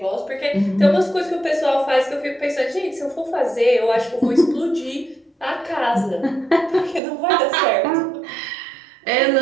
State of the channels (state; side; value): drops out; left; at 7.0 s